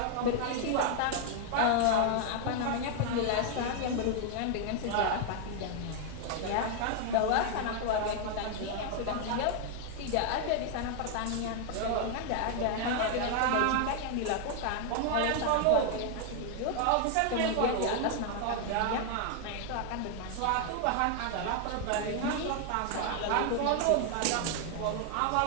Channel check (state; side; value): different; both; correlation 0.00